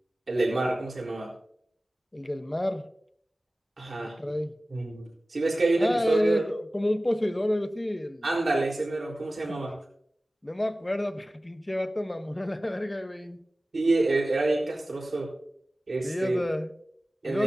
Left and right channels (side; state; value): both; normal; correlation 0.96